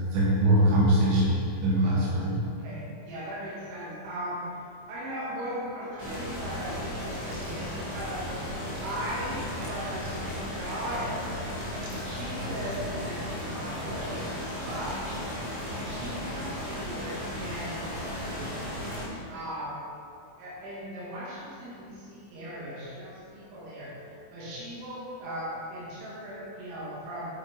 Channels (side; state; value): left; late; 25 ms